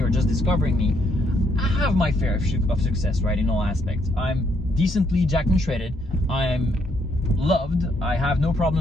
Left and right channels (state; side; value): normal; both; correlation 0.73